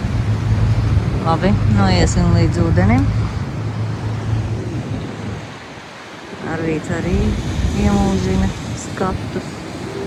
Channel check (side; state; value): both; identical; correlation 1.00